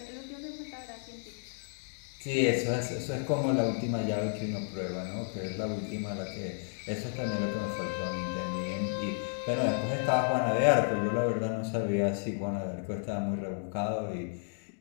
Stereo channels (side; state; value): right; silent; digital silence